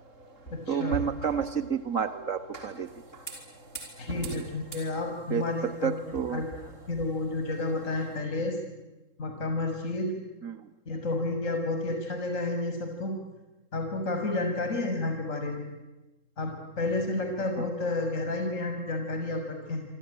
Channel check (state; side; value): late; right; 3.7 ms